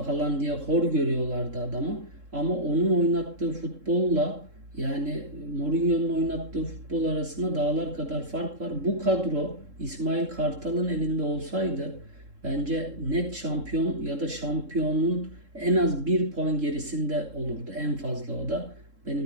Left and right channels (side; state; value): left; late; 3.7 ms